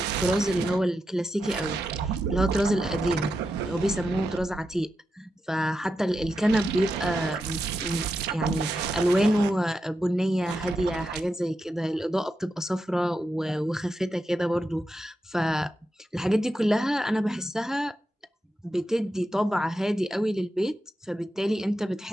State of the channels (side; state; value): both; normal; correlation 0.87